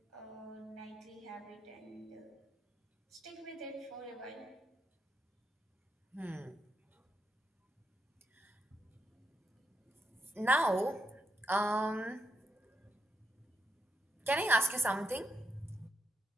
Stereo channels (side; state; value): both; normal; correlation 0.81